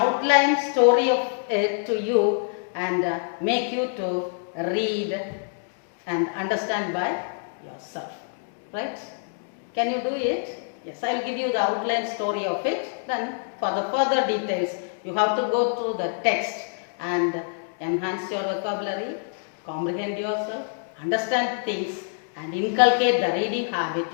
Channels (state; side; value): silent; right; digital silence